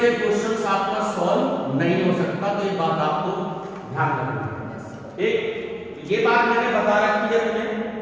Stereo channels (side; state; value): both; identical; correlation 1.00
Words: क्वेश्चंस आपका सॉल्व नहीं हो सकता, तो ये बात आपको ध्यान रखनी है। एक ये बात मैंने बता रखी है तुम्हें।